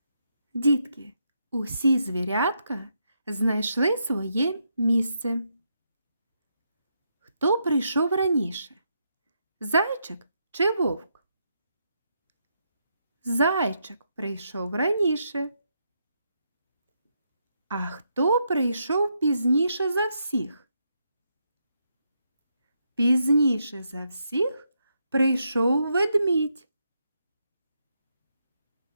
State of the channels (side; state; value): both; inverted; correlation -0.80